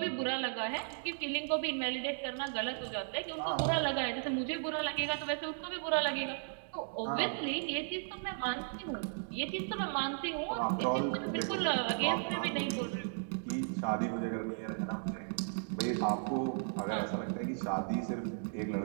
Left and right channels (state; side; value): silent; left; digital silence